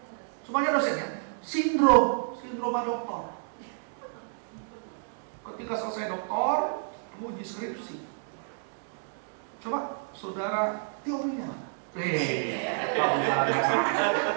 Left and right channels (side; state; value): left; silent; digital silence